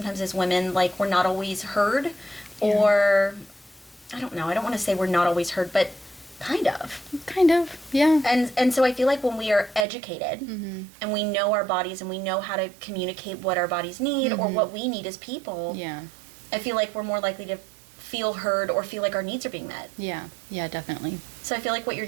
as women, like, we're not always heard, or I don't know, I don't want to say we're not always heard, but kind of, yeah. And so I feel like when we are educated and we know our bodies and we know how to communicate what our bodies need or what we need as people, I feel like we're more likely to feel heard or feel like our needs are being met. Yeah, definitely. So I feel like what you're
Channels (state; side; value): drops out; left; at 9.9 s